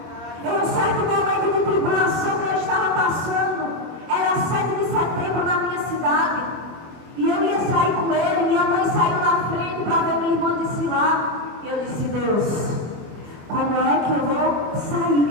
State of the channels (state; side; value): late; left; 24 ms